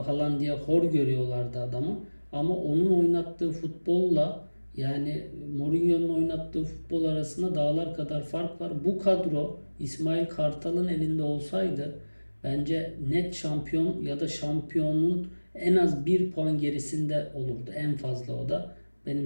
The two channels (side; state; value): both; inverted; correlation -1.00